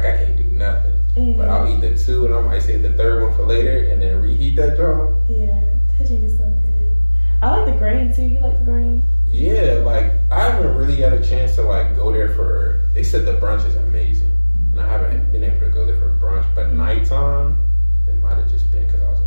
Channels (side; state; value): both; inverted; correlation -1.00